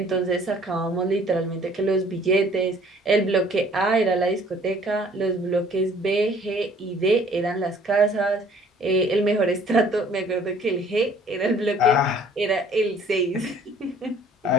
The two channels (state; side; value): normal; both; correlation 0.55